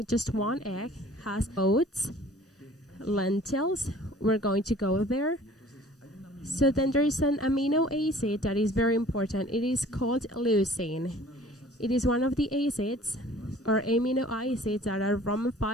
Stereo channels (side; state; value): both; normal; correlation 0.50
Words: just one egg, has oats, lentils. We're going to go there. So then there is an amino acid that is very important. It is called leucine. It is one of the acids or amino acids that are from